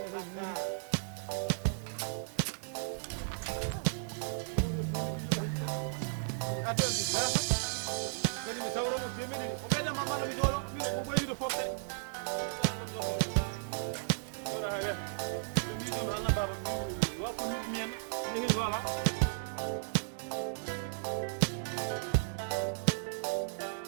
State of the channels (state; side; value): silent; left; digital silence